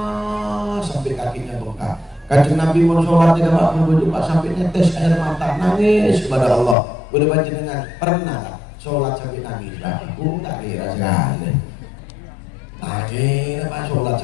sampai kakinya bengkak. Kanjeng Nabi mau sholat tidak Pak sampai netes air mata nangis kepada Allah. Boleh panjenengan pernah sholat sampai nangis? Aku tak kira sekali. Nangis apa sholat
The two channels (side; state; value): right; drops out; at 6.8 s